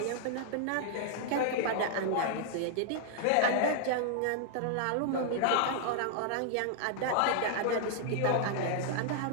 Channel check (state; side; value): different; both; correlation -0.01